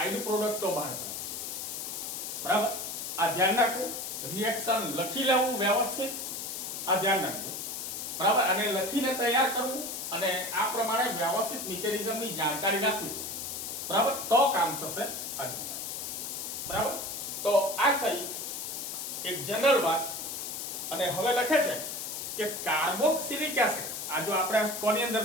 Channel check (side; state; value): left; noise; hiss, 5 dB below the sound